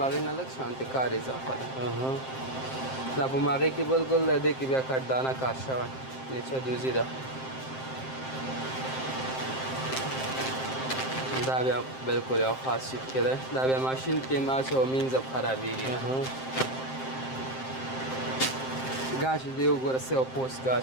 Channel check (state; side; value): late; right; 7.6 ms